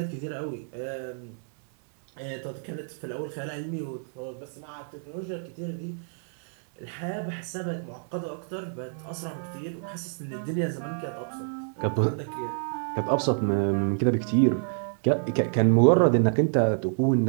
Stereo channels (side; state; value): left; silent; 60 dB below the other